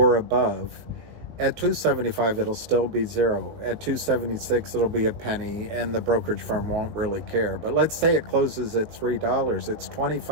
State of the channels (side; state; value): left; late; 19 ms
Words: above? At 275, it'll still be zero. At 276, it'll be a penny, and the brokerage firm won't really care. But let's say it closes at $3. It's